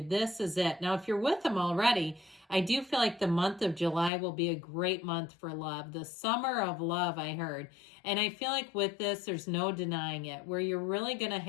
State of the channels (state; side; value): drops out; right; at 4.1 s